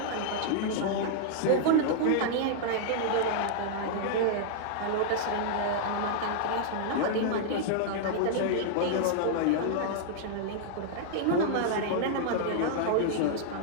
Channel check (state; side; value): different; both; correlation -0.01